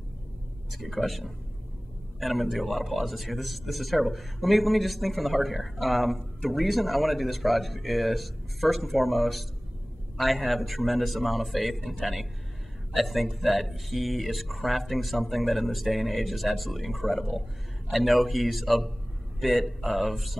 That's a good question. And I'm going to do a lot of pauses here. This is terrible. Let me just think from the heart here. The reason I want to do this project is, first and foremost, I have a tremendous amount of faith in Tenny. I think that he is crafting something that in this day and age is absolutely incredible. I know he's a bit of,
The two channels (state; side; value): normal; both; correlation 0.98